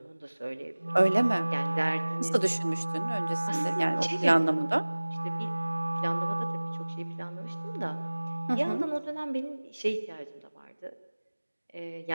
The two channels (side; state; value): both; inverted; correlation -1.00